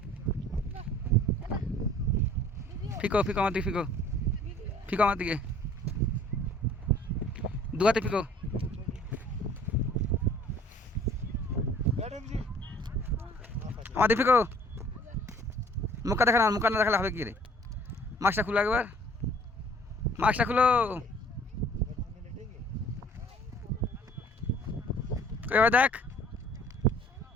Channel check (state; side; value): normal; both; correlation 0.53